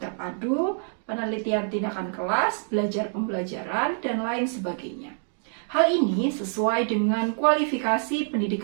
Penelitian Tindakan Kelas, Belajar Pembelajaran, dan lain sebagainya. Hal ini sesuai dengan kualifikasi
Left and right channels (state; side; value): silent; left; 61 dB below the other